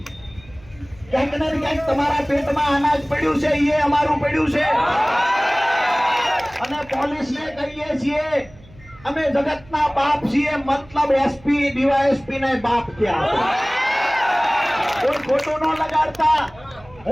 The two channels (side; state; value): right; noise; hum, 24 dB below the sound